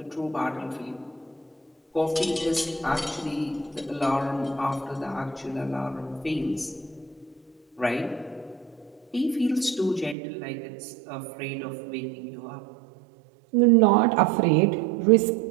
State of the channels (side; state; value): left; drops out; at 10.2 s